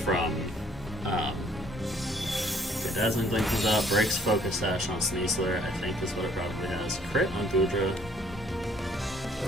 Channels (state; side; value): normal; both; correlation 0.61